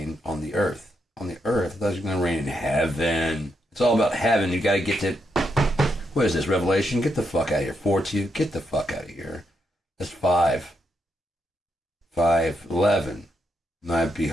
on the earth. On the earth? I thought you were going to reign in heaven. It's all about heaven. You got to get to, what is this, Revelation? Get the fuck out of here. 4:2, get the fuck out of here. That's 5. 5:11. And I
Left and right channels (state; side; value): normal; both; correlation 0.81